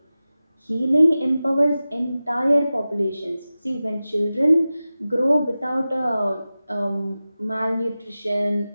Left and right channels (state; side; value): inverted; both; correlation -0.95